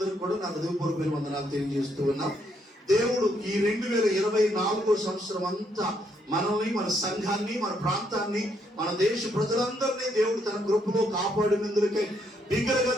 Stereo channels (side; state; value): both; normal; correlation 0.74